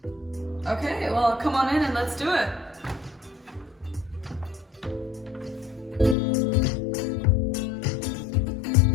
Okay, well, come on in and let's do it.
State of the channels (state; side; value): drops out; right; at 6.2 s